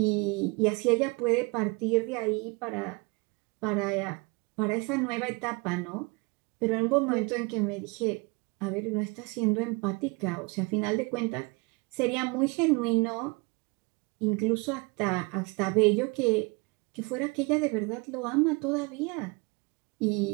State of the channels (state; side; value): quieter; left; 28.6 dB